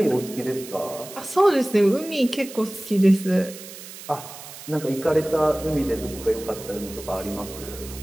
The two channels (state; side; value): noise; right; hiss, 14 dB below the sound